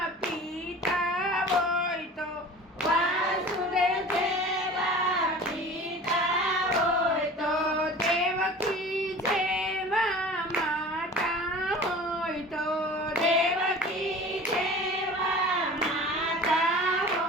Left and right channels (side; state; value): both; normal; correlation 0.40